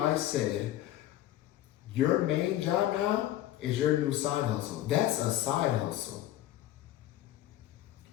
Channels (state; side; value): quieter; right; 13.6 dB